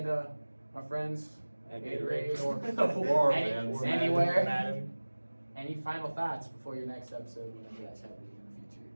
to our friends at Gatorade or Or any- fans. anywhere? Madden. Any final thoughts before your next episode, whenever you guys have it in the future?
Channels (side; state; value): both; inverted; correlation -1.00